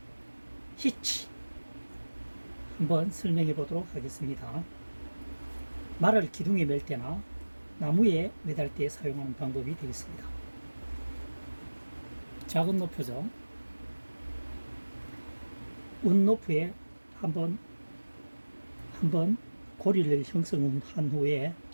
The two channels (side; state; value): both; inverted; correlation -1.00